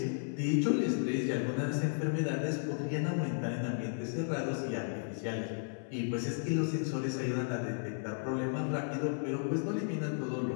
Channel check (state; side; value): silent; right; 55 dB below the other